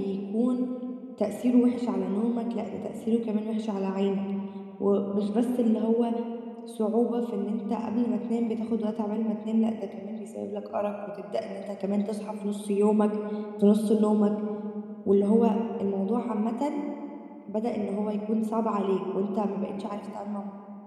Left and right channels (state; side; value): identical; both; correlation 1.00